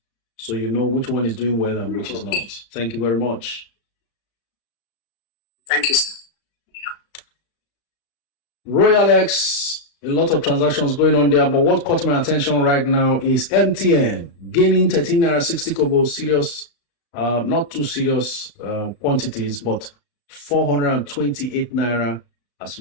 so you know which one is doing well and which is not. Thank you very much. Thank you, sir. Royal X, a lot of transactions going on there, but what caught my attention right now is MTN gaining 13 naira 60 kobo, serious, not too serious quantities, but 428 naira as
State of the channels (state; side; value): late; right; 35 ms